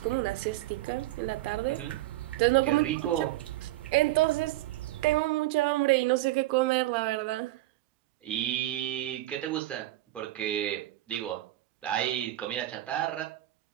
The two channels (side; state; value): left; quieter; 16.0 dB